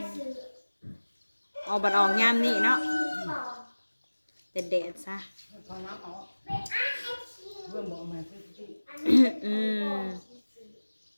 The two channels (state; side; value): inverted; both; correlation -1.00